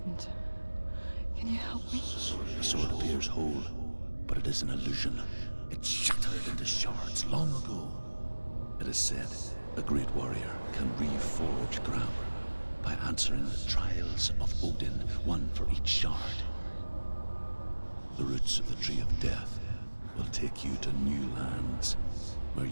Can you help me? The sword appears whole, but it is an illusion. It shattered into shards long ago. It is said a great warrior can reforge Gramr by answering the trials of Odin, one for each shard. The roots of the Tree of Death will take you to new lands where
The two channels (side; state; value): both; inverted; correlation -1.00